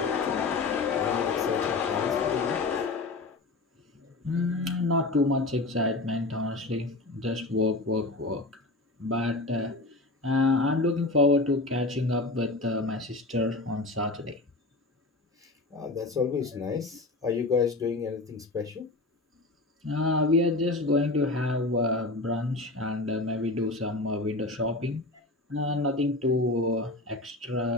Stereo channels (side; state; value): right; quieter; 3.0 dB